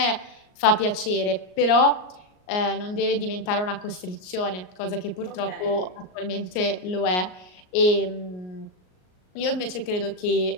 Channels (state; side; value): late; right; 38 ms